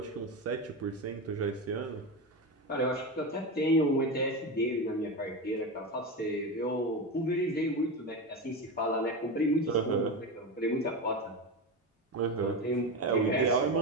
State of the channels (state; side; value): normal; both; correlation 0.19